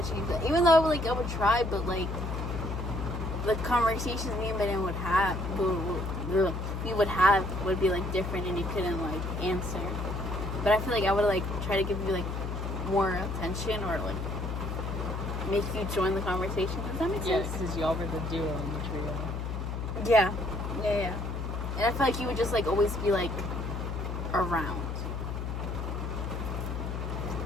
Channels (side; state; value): left; noise; hum, 3 dB below the sound